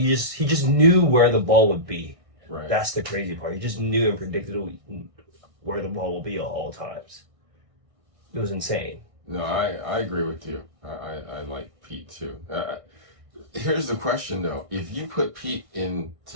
just knew where the ball would be. Right. That's the crazy part. He just knew and predicted where the ball will be at all times. It was insane. No, I agree with you. I like Pete too. Here's the question though: if you put Pete in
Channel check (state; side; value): late; left; 1.6 ms